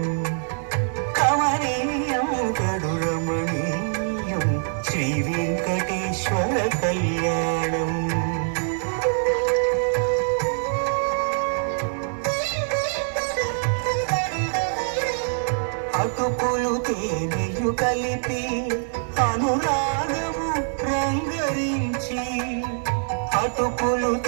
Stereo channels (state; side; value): silent; left; 62 dB below the other